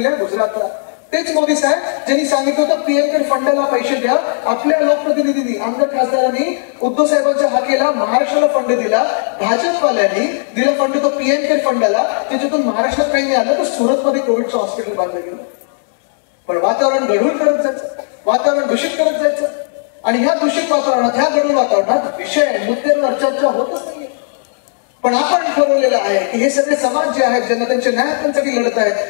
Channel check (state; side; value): silent; right; 66 dB below the other